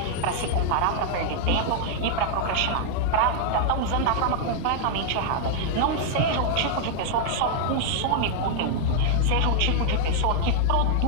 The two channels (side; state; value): both; different; correlation 0.00